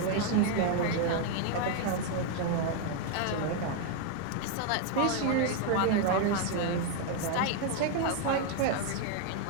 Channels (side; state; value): both; different; correlation 0.01